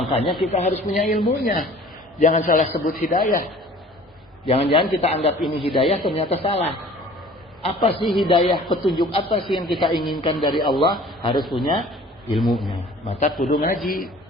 kita harus punya ilmunya. Jangan salah sebut hidayah. Jangan-jangan kita anggap ini hidayah, ternyata salah. Apa sih hidayah, petunjuk apa sih yang kita inginkan dari Allah? Harus punya ilmunya. Maka kudu ngaji.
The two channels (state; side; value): normal; both; correlation 0.48